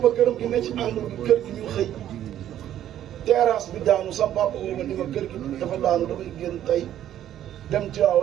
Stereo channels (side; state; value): left; quieter; 11.5 dB